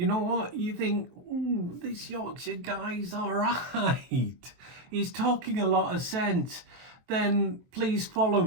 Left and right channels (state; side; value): late; left; 23 ms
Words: know what, you think, this Yorkshire guy's all right, he's talking a lot of sense, then please follow